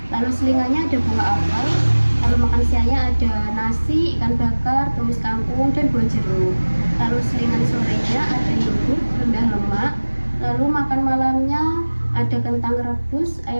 Lalu selingannya ada buah apel. Lalu makan siangnya ada nasi, ikan bakar, tumis kangkung, dan buah jeruk. Lalu selingan sorenya ada yogurt rendah lemak. Lalu makan malamnya ada kentang rebus,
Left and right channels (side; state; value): both; inverted; correlation -1.00